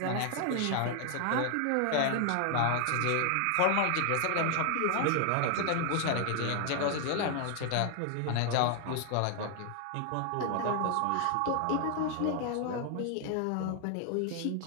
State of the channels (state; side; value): different; both; correlation 0.00